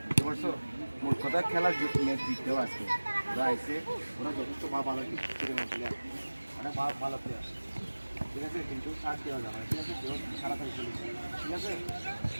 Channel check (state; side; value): inverted; both; correlation -1.00